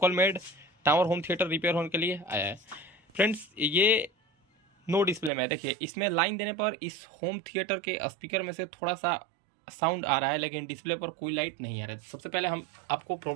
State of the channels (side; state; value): left; drops out; at 5.3 s